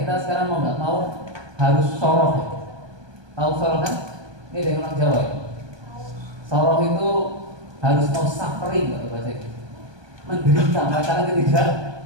sekarang mau nggak mau harus soroh. Tahu soroh kan? Ini dari orang Jawa ya. Soroh itu harus mau suffering kalau bahasa itu, menderita, merasakan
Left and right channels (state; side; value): late; left; 1.2 ms